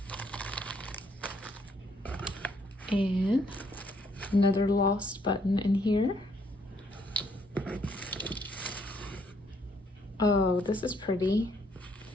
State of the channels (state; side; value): normal; both; correlation 0.69